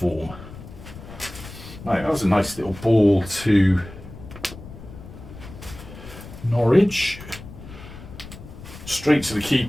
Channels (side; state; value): left; noise; rumble, 15 dB below the sound